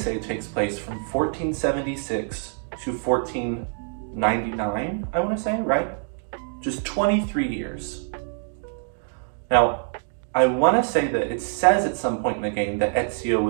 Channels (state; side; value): silent; left; 62 dB below the other